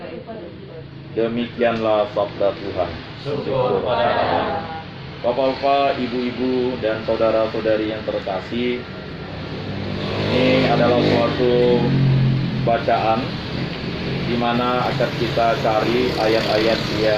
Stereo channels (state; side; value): identical; both; correlation 1.00